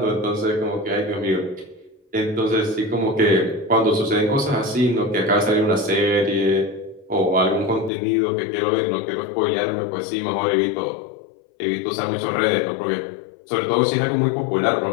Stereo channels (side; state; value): right; drops out; at 7.9 s